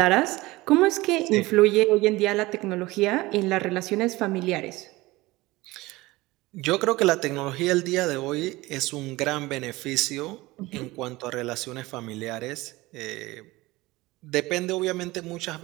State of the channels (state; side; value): quieter; left; 20.2 dB